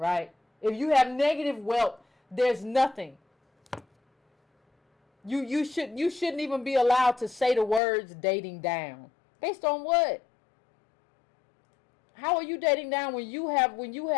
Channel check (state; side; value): drops out; right; at 7.8 s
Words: If you have negative wealth, there's nothing. You shouldn't even be allowed to say the words dating down. Based on what? How are you dating down when you have